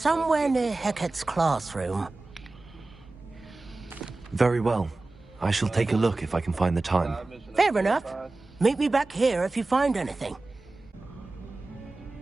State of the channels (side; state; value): left; quieter; 3.2 dB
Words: near Hecat's classroom. Very well. I shall take a look if I can find the time. Fair enough. Meet me back here if you find anything.